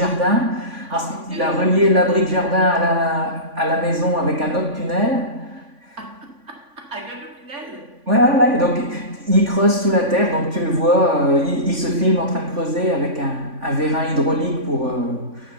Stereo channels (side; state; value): left; late; 3.5 ms